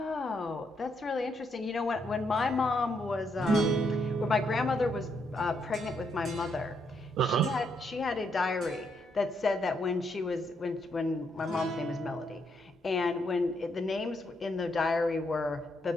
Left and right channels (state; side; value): normal; both; correlation 0.76